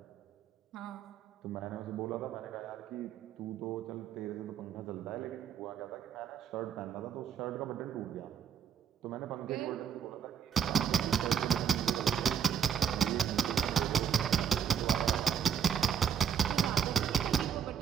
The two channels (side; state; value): left; quieter; 8.0 dB